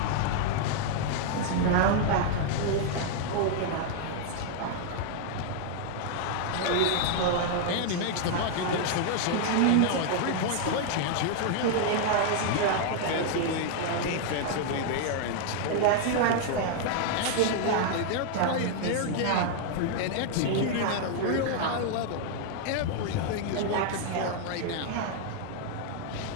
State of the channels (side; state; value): both; different; correlation 0.00